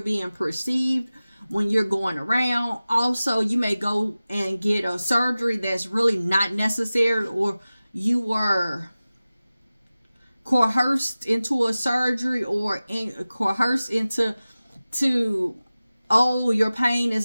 being perceived when you're going around. Also, you may go and get a surgery that's really not necessary, or you were coerced into a surgery, or coerced into oh, your pain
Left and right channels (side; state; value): both; inverted; correlation -0.97